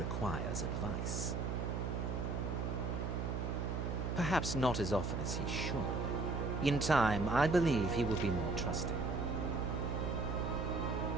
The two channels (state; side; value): noise; right; hum, 1 dB below the sound